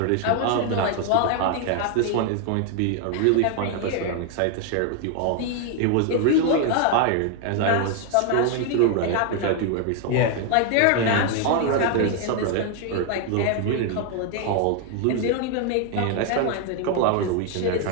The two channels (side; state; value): both; different; correlation 0.00